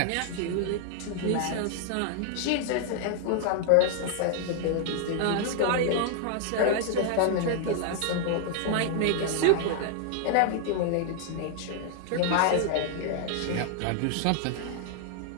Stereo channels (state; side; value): different; both; correlation 0.00